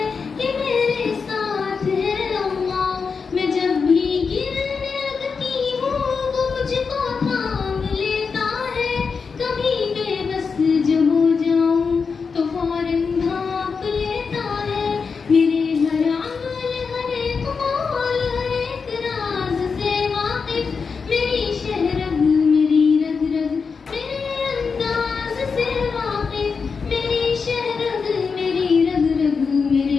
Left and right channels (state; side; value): quieter; right; 5.3 dB